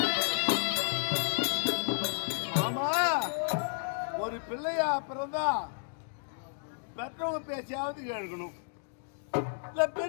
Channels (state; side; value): silent; right; digital silence